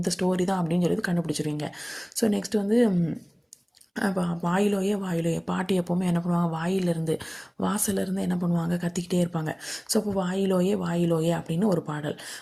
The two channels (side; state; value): both; identical; correlation 1.00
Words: ஸ்டோரி தான் அப்படின்னு சொல்லி கண்டுபிடிச்சிருவீங்க. ஸோ நெக்ஸ்ட் வந்து வாயிலோயே பாட்டி எப்போவுமே என்ன பண்ணுவாங்க, வாசலேருந்து என்ன பண்ணுவாங்க, கத்திக்கிட்டே இருப்பாங்க. ஸோ அப்போ வாயிலோயே அப்படின்னு ஒரு பாடல்.